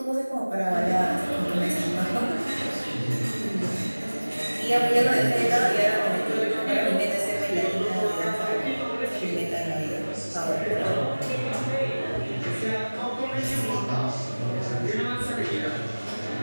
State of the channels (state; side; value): inverted; both; correlation -1.00